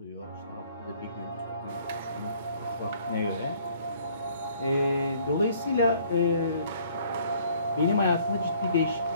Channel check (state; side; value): inverted; both; correlation -0.59